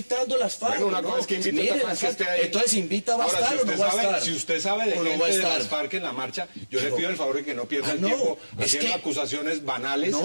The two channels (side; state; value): both; inverted; correlation -1.00